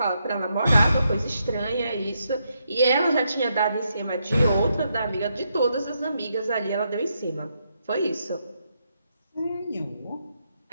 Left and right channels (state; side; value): inverted; both; correlation -0.80